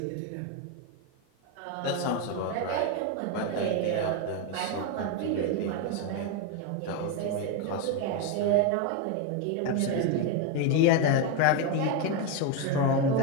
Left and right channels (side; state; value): both; different; correlation 0.02